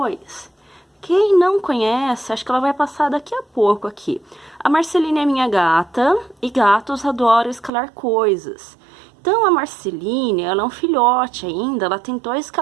Quem não conhece, acho que ela vai passar daqui a pouco aqui. A Marceline é minha gata, e gatos adoram escalar coisas. Então a Marceline, ela é um filhote ainda, ela tentou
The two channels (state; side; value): drops out; left; at 7.7 s